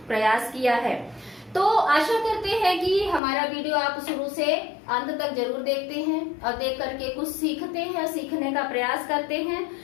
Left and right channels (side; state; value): right; drops out; at 3.2 s